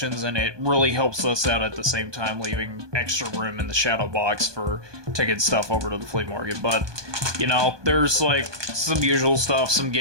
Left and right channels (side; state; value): left; late; 1.2 ms